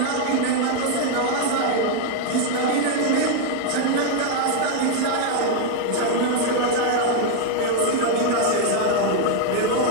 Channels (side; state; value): both; different; correlation 0.00